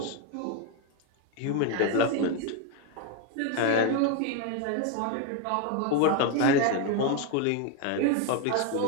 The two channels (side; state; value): both; different; correlation 0.01